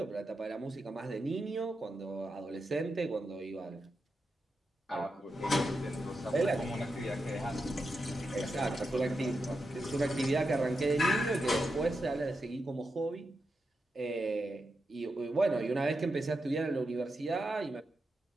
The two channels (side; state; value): both; normal; correlation 0.87